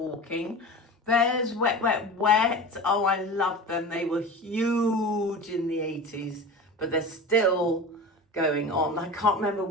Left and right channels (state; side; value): normal; both; correlation 0.32